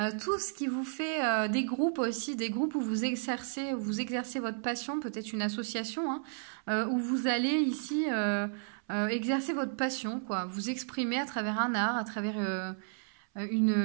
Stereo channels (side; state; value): left; silent; 56 dB below the other